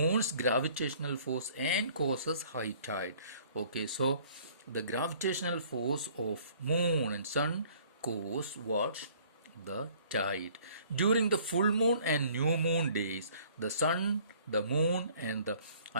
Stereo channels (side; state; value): both; inverted; correlation -0.55